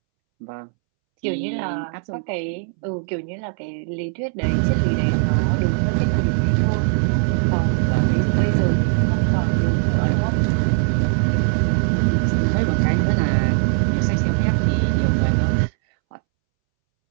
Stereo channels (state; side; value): silent; left; 66 dB below the other